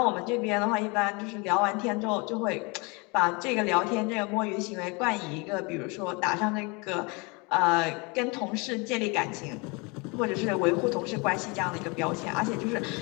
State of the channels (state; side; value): quieter; right; 28.9 dB